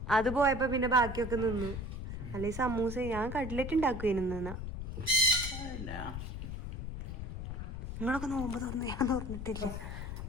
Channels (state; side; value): noise; left; rumble, 6 dB below the sound